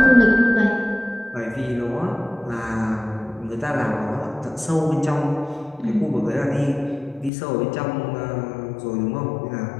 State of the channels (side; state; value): right; drops out; at 7.3 s